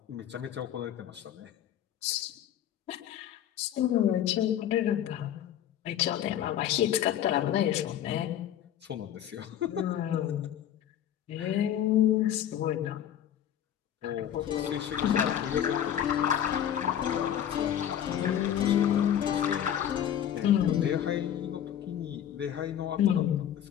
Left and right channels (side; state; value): right; quieter; 10.4 dB